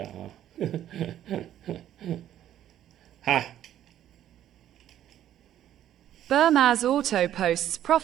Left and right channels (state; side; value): quieter; left; 11.6 dB